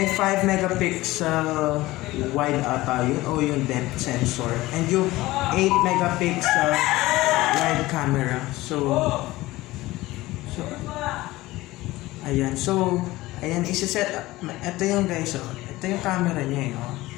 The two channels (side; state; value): right; quieter; 18.4 dB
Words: 5 megapixel wide ata yun, o yung depth sensor. And yung 8 megapixel wide camera. So, ayan. So, ayan, isa-set. Ito yung guys, oh. Ito yung camera niya, oh.